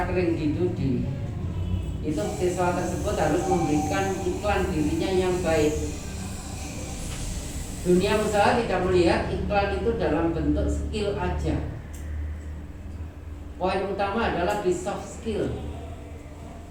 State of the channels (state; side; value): identical; both; correlation 1.00